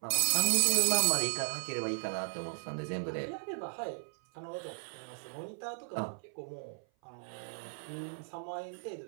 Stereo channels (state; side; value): silent; left; 54 dB below the other